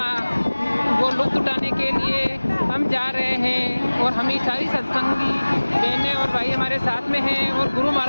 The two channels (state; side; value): inverted; both; correlation -1.00